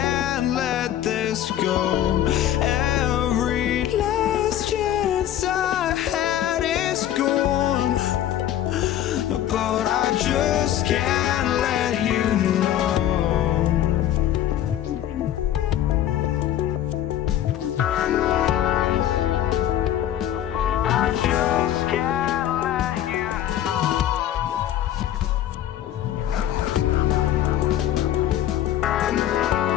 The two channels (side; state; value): right; quieter; 11.6 dB